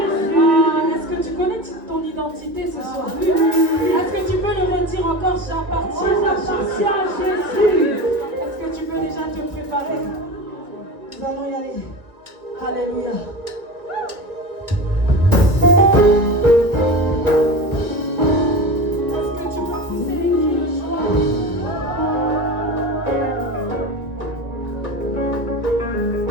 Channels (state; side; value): late; left; 2.1 ms